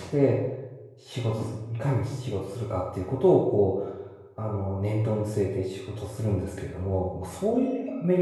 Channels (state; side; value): identical; both; correlation 1.00